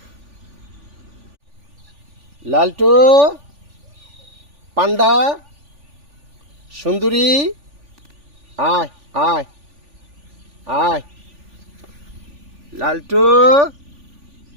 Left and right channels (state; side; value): late; left; 3.4 ms